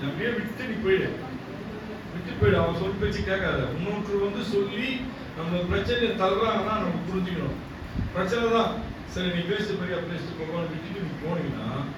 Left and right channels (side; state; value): both; identical; correlation 1.00